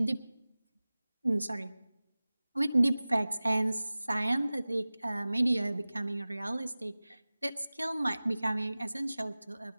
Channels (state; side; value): inverted; both; correlation -0.98